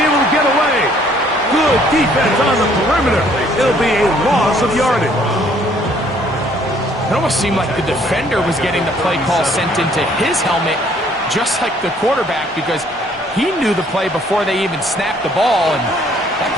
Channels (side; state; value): both; normal; correlation 0.62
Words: able to get away. Good defense on the perimeter. It'll be a loss of yardage. It almost seemed like the defender was getting the play call sent into his helmet, just like the quarterback, because he knew the play before they even snapped the ball, and that